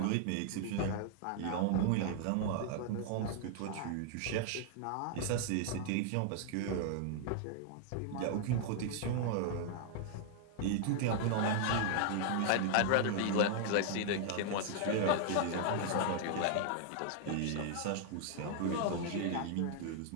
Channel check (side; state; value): both; different; correlation 0.00